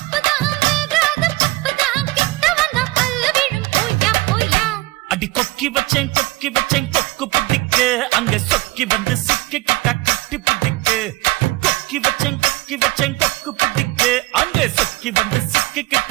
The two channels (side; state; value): left; quieter; 20.3 dB